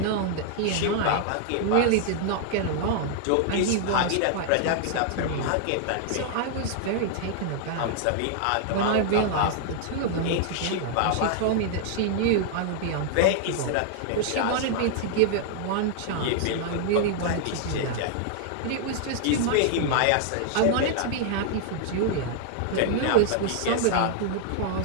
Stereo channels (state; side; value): different; both; correlation 0.00